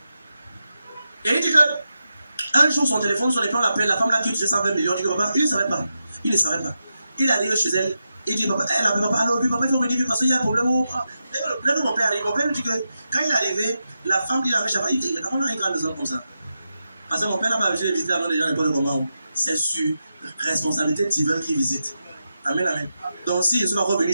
Et il dit que un jour son téléphone sonne et puis on l'appelle, la femme là qui touchait 120 millions. Il dit que papa, il ne savait pas. Il ne savait pas. Il arrive chez elle. Il dit papa, elle appelle papa, alors lui papa il faut venir parce qu'il y a un problème. Là où mon père arrive, mon père lui dit que quand il est arrivé, la femme qui l'avait chavé, il dit on a une grande maison comme ça. Parce que mon père n'a pas visité visiter avant les gens n'importe comment. C'est sur responsabilité divine qui visite. Amen, amen. Donc si je suis pas revenu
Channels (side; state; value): both; inverted; correlation -0.88